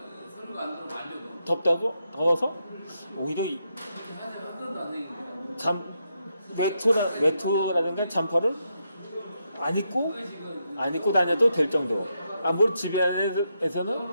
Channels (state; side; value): inverted; both; correlation -0.82